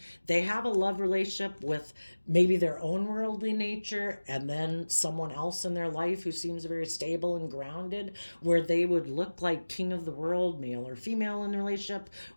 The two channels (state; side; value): inverted; both; correlation -1.00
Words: They have a love relationship with maybe their own worldly nature, and then someone else in their life who seems very stable and grounded, where they would look like king of the world, male or female in the relationship,